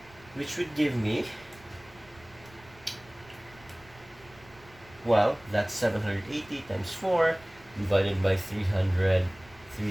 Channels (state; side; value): noise; right; rumble, 25 dB below the sound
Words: Which would give me, well, that's 780 times 4 divided by